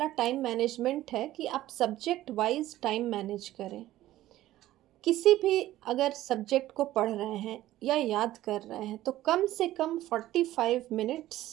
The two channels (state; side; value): quieter; left; 14.8 dB